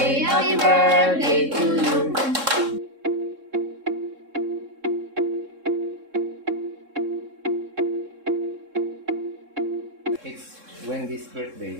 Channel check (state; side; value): late; left; 3.7 ms